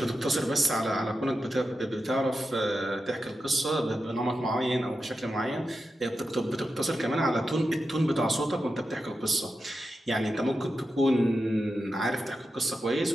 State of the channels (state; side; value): normal; both; correlation 0.89